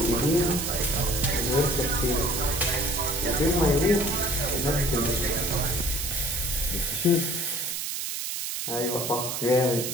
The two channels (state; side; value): noise; right; hiss, 3 dB below the sound